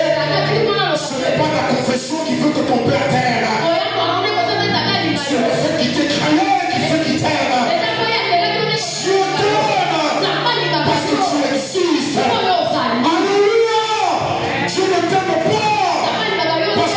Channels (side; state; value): both; identical; correlation 1.00